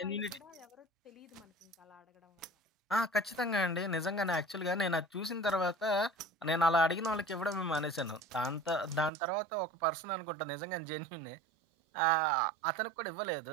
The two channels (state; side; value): drops out; left; at 9.1 s